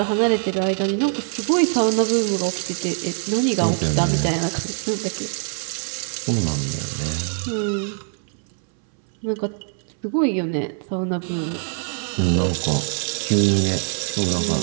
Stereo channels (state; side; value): silent; left; 64 dB below the other